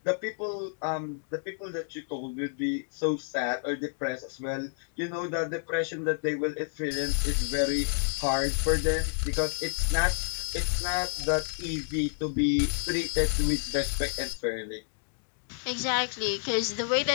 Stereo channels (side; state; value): right; silent; digital silence